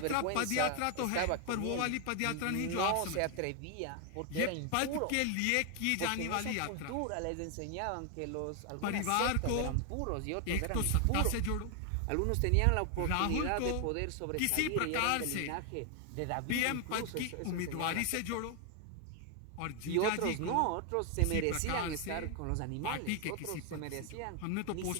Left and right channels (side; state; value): both; different; correlation 0.00